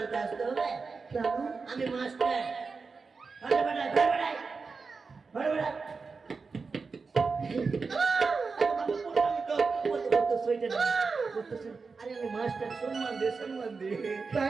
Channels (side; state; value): left; quieter; 4.6 dB